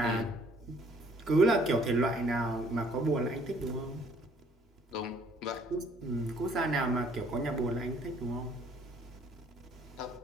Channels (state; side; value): normal; both; correlation 0.61